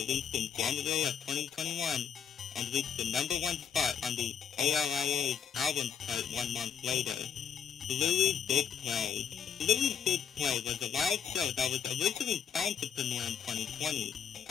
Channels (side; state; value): right; quieter; 7.2 dB